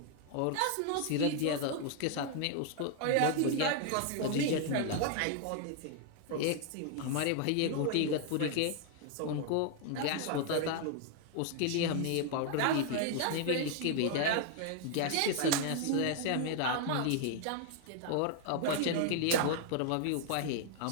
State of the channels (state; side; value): different; both; correlation 0.00